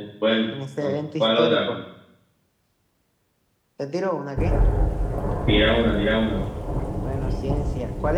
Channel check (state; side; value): identical; both; correlation 1.00